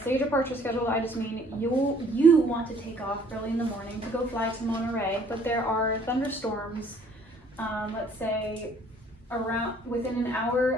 say departure scheduled, I just mean you want to take off early in the morning to go fly to Monterey, but there are thunderstorms, let's say within an hour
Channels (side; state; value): both; normal; correlation 0.59